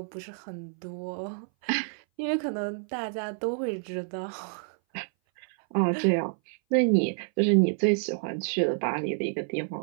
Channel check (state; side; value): silent; left; 58 dB below the other